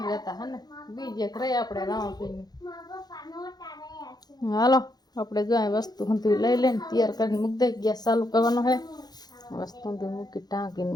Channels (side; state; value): right; late; 0.19 ms